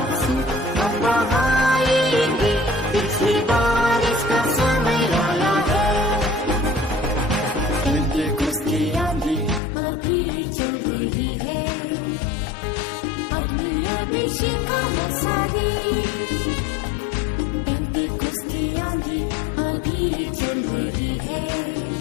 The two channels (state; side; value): drops out; right; at 9.6 s